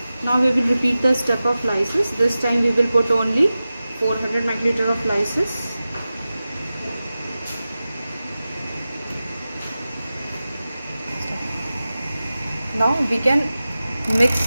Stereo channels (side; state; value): both; inverted; correlation -0.95